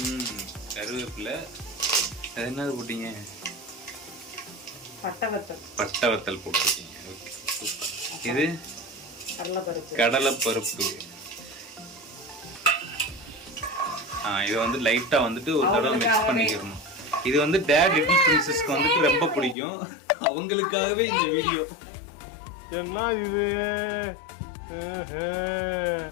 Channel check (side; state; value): right; drops out; at 19.6 s